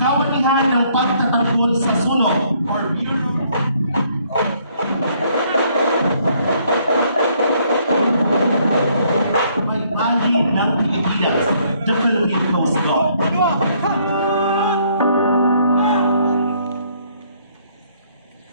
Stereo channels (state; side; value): inverted; both; correlation -0.66